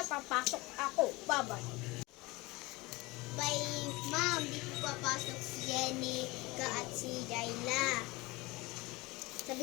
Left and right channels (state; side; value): quieter; right; 22.8 dB